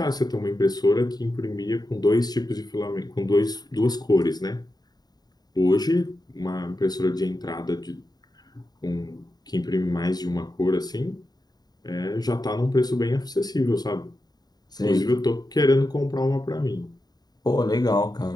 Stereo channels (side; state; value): right; late; 0.19 ms